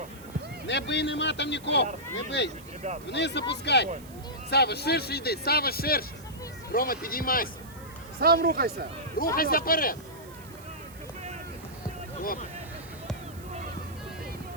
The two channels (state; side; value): noise; right; hiss, 21 dB below the sound